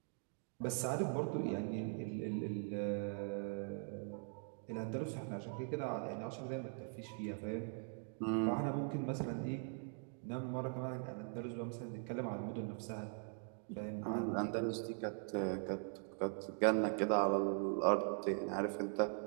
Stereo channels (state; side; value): silent; left; 50 dB below the other